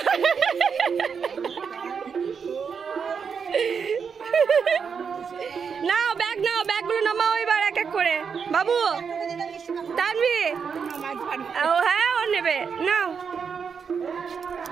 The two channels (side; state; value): left; quieter; 6.3 dB